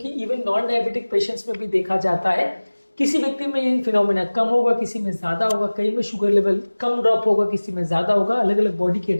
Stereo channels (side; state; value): both; inverted; correlation -1.00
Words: इवन नॉन डायबिटिक पेशेंट्स में भी देखा जाता है। किसी व्यक्ति में ये फिनोमेना कम होगा, किसी में ज़्यादा होगा, कई में शुगर लेवल कम ड्रॉप होगा, किसी में ज़्यादा होगा, अलग अलग बॉडी के